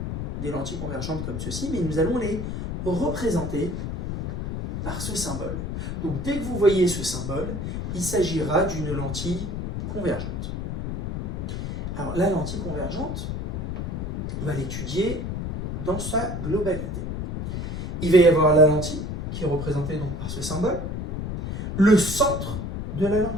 des lentilles convergentes comme ceci, mais nous allons les représenter par ce symbole. Donc dès que vous voyez ce symbole, il s'agira d'une lentille convergente. Alors la lentille convergente, on va l'étudier dans sa globalité. Il va y avoir la lentille, qui est représentée donc par ce symbole, le centre de la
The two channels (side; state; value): left; noise; rumble, 4 dB below the sound